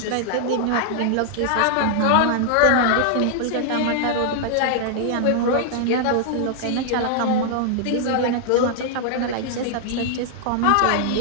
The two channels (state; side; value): different; both; correlation -0.01